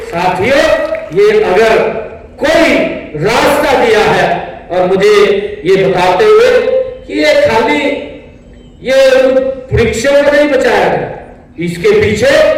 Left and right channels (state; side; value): identical; both; correlation 1.00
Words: साथियों ये अगर कोई रास्ता दिया है, और मुझे ये बताते हुए कि ये खाली ये वृक्षों को नहीं बचाया गया, इसके पीछे